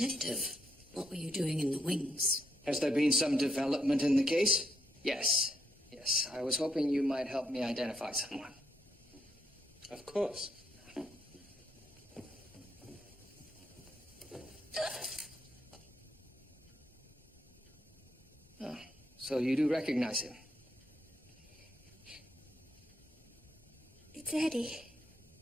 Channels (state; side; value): normal; both; correlation 0.77